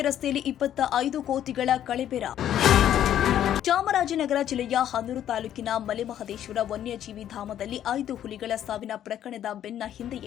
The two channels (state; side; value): quieter; right; 10.9 dB